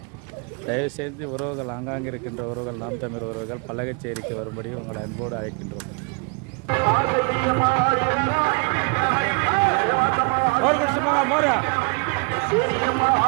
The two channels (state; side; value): quieter; left; 32.2 dB